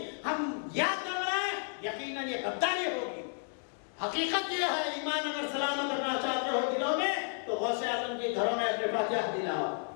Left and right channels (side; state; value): right; silent; 55 dB below the other